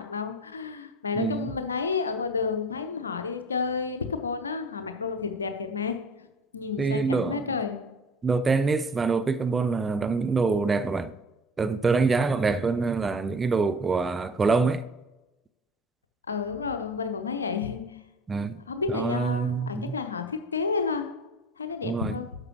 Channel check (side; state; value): both; normal; correlation 0.43